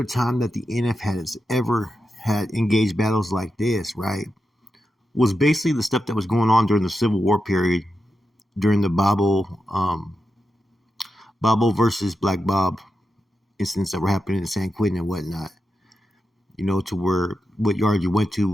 time that the NF has ever had engaged battles like this, right, was basically the stuff that was going on during the Civil War period, during the Bobo versus Black Bob incidents that were happening in San Quentin and whatnot. You know, to where what yard you went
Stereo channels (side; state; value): both; normal; correlation 0.89